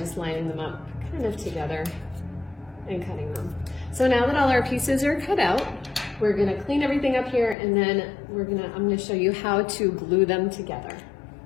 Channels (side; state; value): right; drops out; at 7.6 s